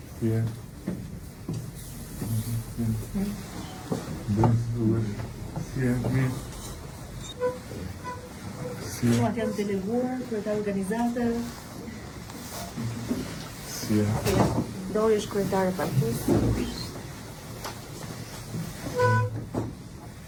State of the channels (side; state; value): both; identical; correlation 1.00